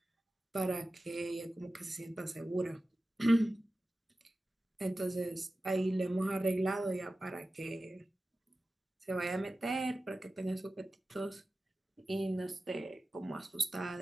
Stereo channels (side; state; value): both; normal; correlation 0.95